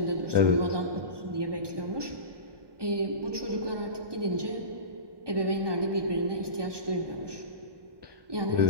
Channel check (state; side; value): late; left; 1.2 ms